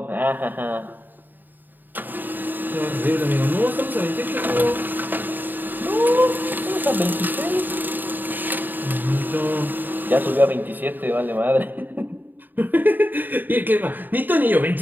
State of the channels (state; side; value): late; left; 0.090 ms